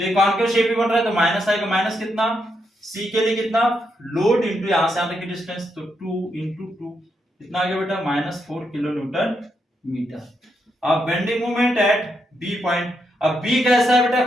ये कॉन्केव शेप ही बन रहा है, तो माइनस आएगा, माइनस कितना, सी के लिए कितना, लोड इंटू यहां से यहां तक की डिस्टेंस, तो 2 इंटू 2 कितना आ गया बेटा, -4 किलो न्यूटन मीटर। अब bending moment at B point, अब बी कैसा है बेटा,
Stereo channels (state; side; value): normal; both; correlation 0.81